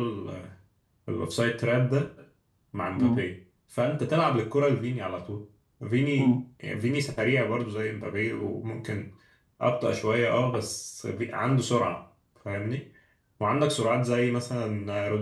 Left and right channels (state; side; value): identical; both; correlation 1.00